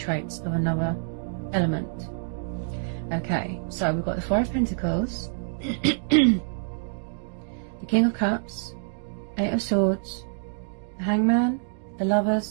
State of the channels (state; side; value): silent; left; digital silence